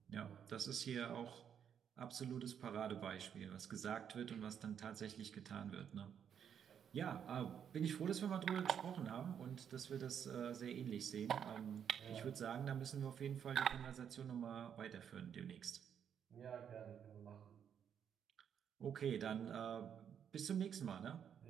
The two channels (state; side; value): quieter; left; 8.3 dB